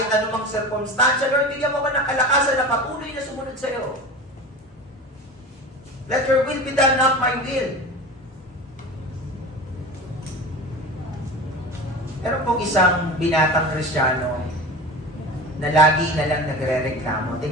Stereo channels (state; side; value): normal; both; correlation 0.32